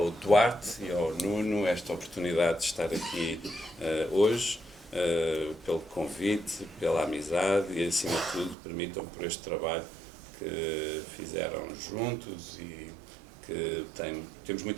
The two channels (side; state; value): left; drops out; at 8.6 s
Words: Duarte e ao Nuno esta oportunidade de estar aqui hoje, pelo convite, pela amizade e, acima de tudo, permitam por este trabalho que fizeram juntos e que temos